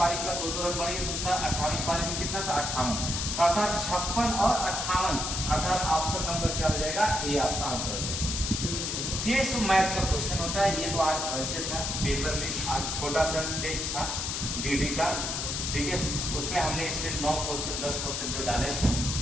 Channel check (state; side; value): noise; left; hiss, 2 dB below the sound